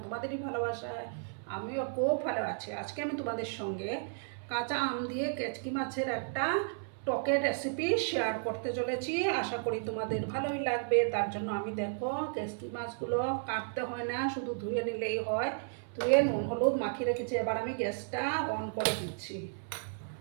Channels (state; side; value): silent; left; 55 dB below the other